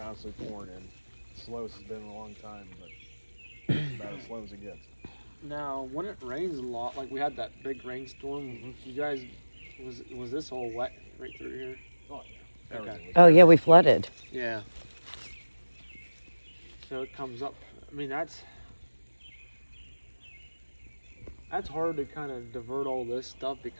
pouring in. Slowest has been in a long time, but about as slow as it gets. Now, when it rains a lot, like we had that big rainstorm, you guys, was this all wet right through here? Oh, yeah. Okay. Oh, yeah, we flooded. Yeah. So it comes up. I mean, that's hard to kind of divert all this stuff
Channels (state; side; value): inverted; both; correlation -1.00